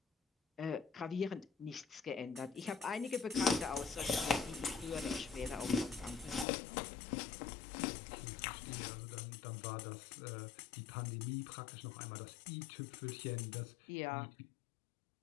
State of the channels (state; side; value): drops out; right; at 6.5 s